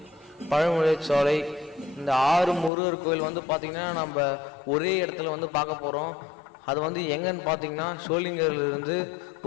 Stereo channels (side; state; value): right; drops out; at 2.7 s